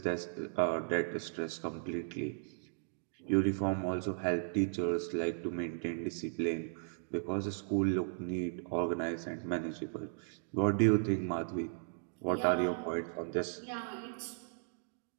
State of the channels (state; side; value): silent; left; digital silence